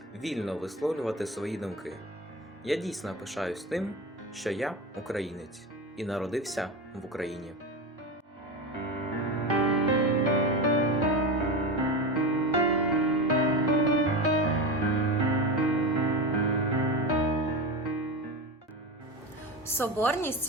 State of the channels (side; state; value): both; normal; correlation 0.21